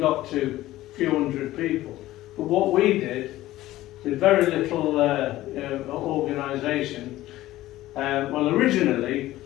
to a few hundred people. But what we did, with very little organisation, well, originally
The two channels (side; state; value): right; quieter; 15.8 dB